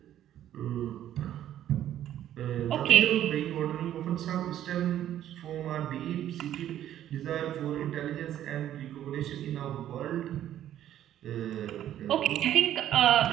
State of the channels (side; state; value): left; quieter; 11.7 dB